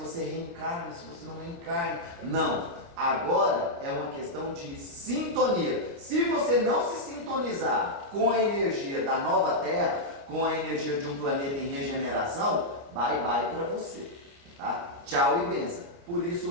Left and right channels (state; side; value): late; left; 29 ms